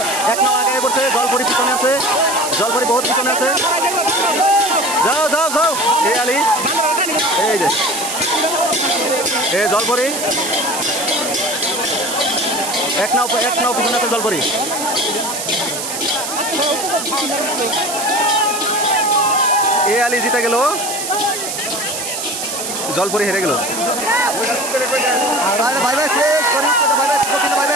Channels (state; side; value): noise; right; hiss, 5 dB below the sound